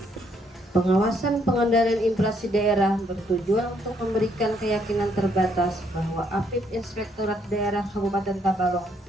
Pengawasan pengendalian inflasi daerah bertujuan untuk memberikan keyakinan terbatas bahwa APIP Inspektorat Daerah Kabupaten Tabalong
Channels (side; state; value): both; normal; correlation 0.71